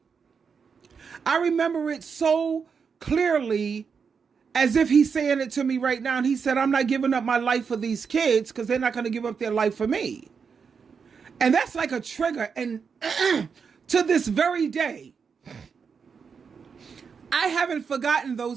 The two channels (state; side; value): quieter; left; 6.0 dB